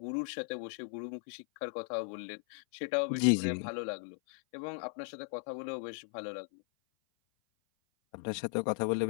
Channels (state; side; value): silent; right; 53 dB below the other